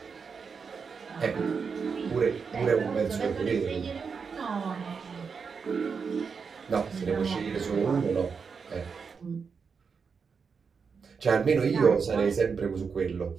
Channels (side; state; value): left; quieter; 5.7 dB